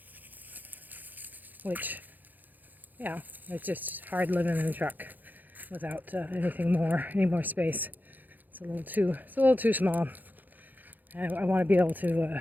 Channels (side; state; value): left; late; 0.085 ms